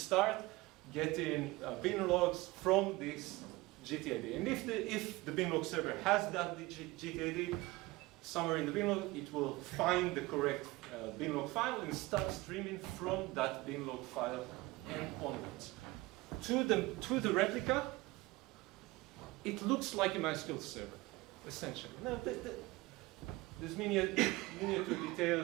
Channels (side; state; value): left; quieter; 21.0 dB